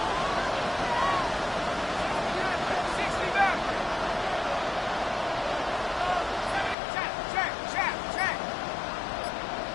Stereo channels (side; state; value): right; drops out; at 6.8 s